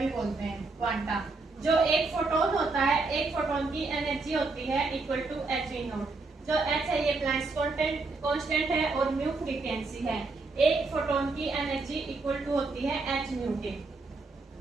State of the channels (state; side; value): quieter; left; 3.7 dB